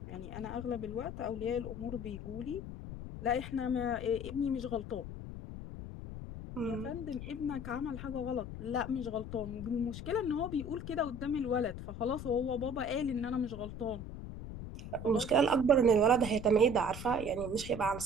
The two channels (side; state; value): left; noise; rumble, 9 dB below the sound